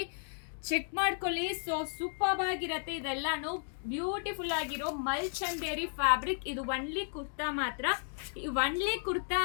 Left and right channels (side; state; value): right; silent; 55 dB below the other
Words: ಚೆಕ್ ಮಾಡ್ಕೊಳ್ಳಿ. ಸೊ ಸೂಪರ್ ಆಗಿರತ್ತೆ. ಇದೆಲ್ಲಾನು ಬ್ಯೂಟಿಫುಲ್ ಆಗಿರೋ ಮಲ್ ಚಂದೇರಿ ಫ್ಯಾಬ್ರಿಕ್. ಇದು ಒನ್ಲಿ ಕುರ್ತಾ